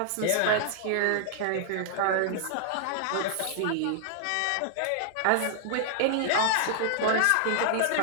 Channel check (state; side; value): different; both; correlation -0.01